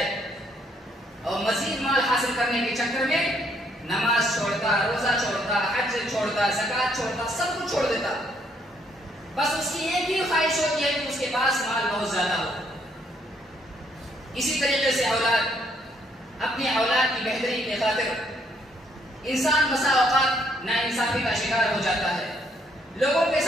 اور مزید مال حاصل کرنے کے چکر میں نماز چھوڑتا، روزہ چھوڑتا، حج چھوڑتا، زکوٰۃ چھوڑتا، سب کچھ چھوڑ دیتا۔ بس اس کی ایک ہی خواہش ہوتی ہے کہ اس کے پاس مال بہت زیادہ ہو۔ اسی طریقے سے اولاد، اپنی اولاد کی بہتری کی خاطر انسان بسا اوقات ناانصافی کا شکار ہو جاتا ہے، لوگوں کے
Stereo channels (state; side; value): normal; both; correlation 0.69